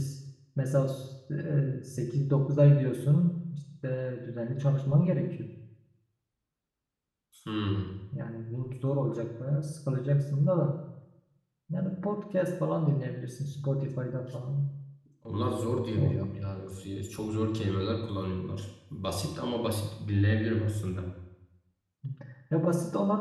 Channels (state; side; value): identical; both; correlation 1.00